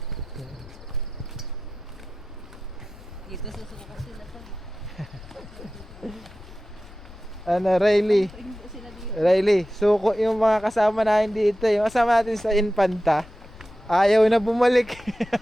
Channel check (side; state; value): left; noise; rumble, 18 dB below the sound